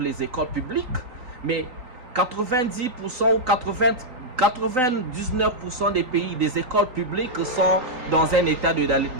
les écoles publiques, mais 90% ou 99% des pays, des écoles publiques sont dans un état de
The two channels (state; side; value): late; left; 3.9 ms